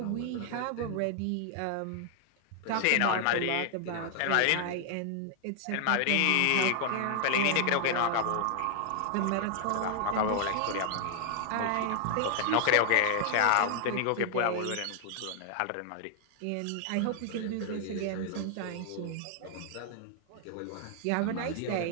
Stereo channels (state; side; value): different; both; correlation 0.00